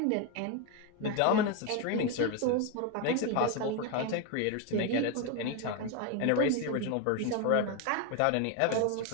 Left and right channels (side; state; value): both; different; correlation 0.02